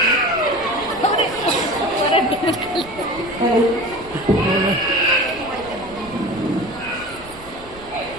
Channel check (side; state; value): right; noise; rumble, 20 dB below the sound